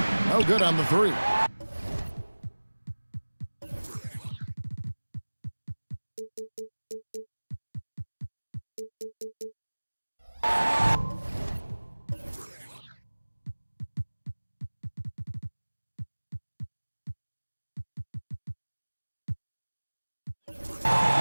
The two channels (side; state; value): both; inverted; correlation -1.00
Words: No good on the three.